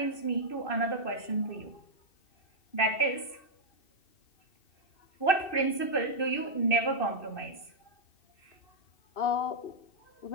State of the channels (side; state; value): right; late; 2.6 ms